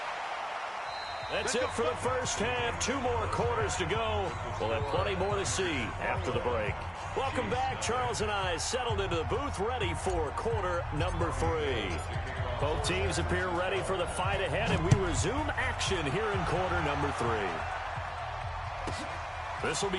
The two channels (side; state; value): both; identical; correlation 1.00